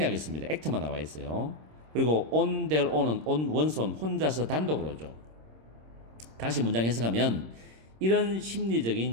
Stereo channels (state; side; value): late; left; 26 ms